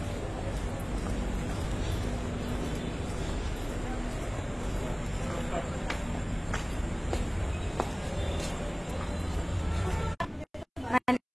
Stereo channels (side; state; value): both; identical; correlation 1.00